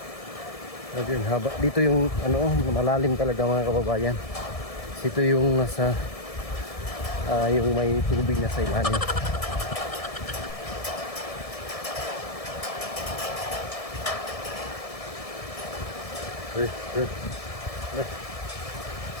Ayun, haba. Dito yung ano, malalim talaga mga kababayan. Dito yung nasa yung may tubig na sa ilalim.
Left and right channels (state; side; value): late; right; 1.7 ms